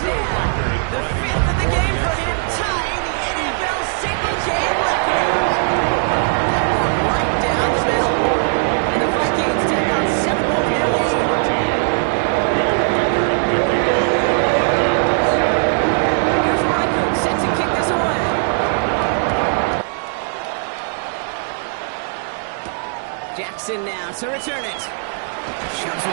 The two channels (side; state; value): left; silent; 67 dB below the other